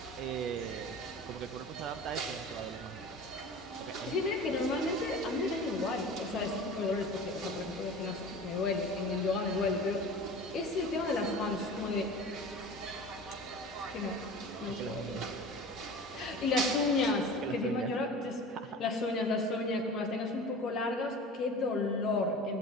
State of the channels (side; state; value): both; normal; correlation 0.37